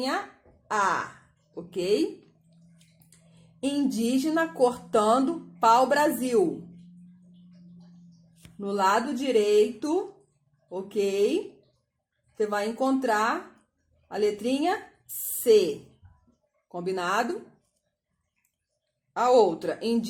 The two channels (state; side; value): identical; both; correlation 1.00